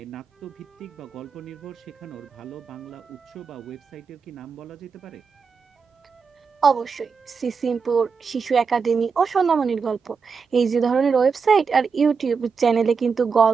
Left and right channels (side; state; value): left; quieter; 5.4 dB